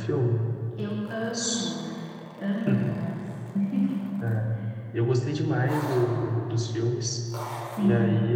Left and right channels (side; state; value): both; identical; correlation 1.00